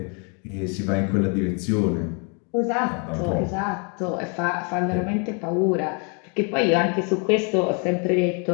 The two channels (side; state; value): right; quieter; 36.6 dB